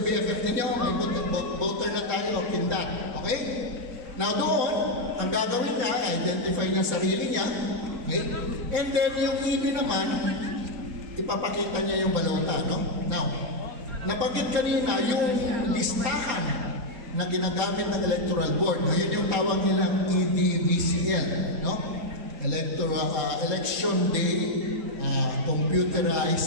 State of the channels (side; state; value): left; late; 4.2 ms